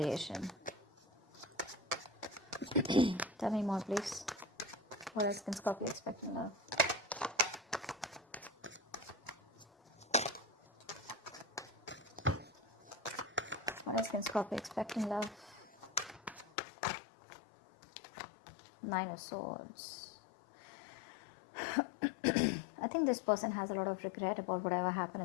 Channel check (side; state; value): right; drops out; at 16.5 s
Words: Tell me more, please. What else can Scorpio expect in love? What else can Scorpio expect in love? 9 of Swords. I think this person has a lot of regret about whatever happened